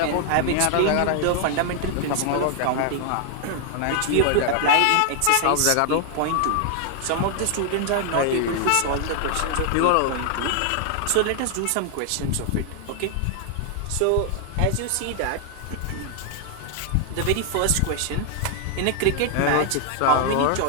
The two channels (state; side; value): different; both; correlation 0.00